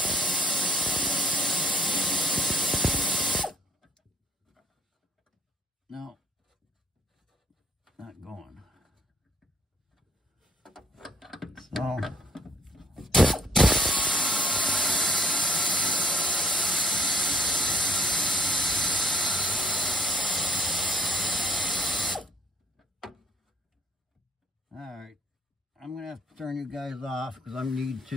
No, not going. So, all right, I'm gonna have to turn you guys off because I need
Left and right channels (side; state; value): both; normal; correlation 0.55